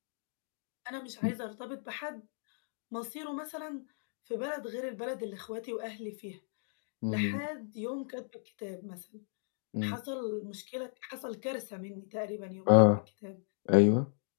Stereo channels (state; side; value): silent; right; digital silence